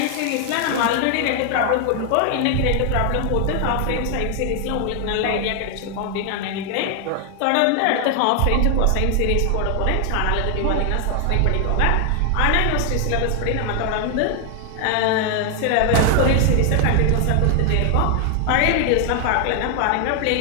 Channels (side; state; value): both; different; correlation 0.00